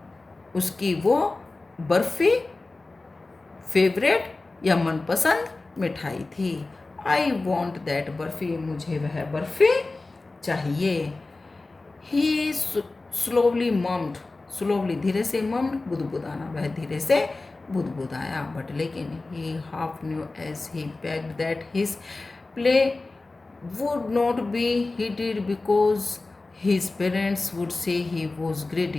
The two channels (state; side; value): quieter; right; 3.3 dB